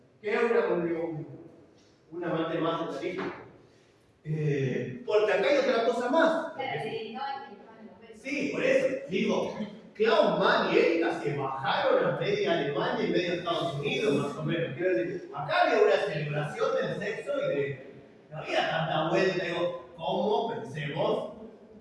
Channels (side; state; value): both; identical; correlation 1.00